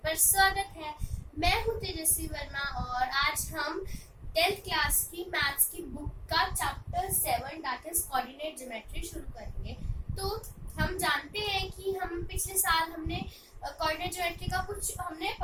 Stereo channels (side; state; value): both; identical; correlation 1.00